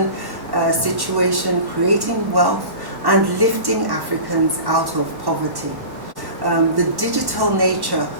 situation, creating wealth, and lifting Africans out of poverty. The digital nature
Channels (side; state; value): left; late; 1.1 ms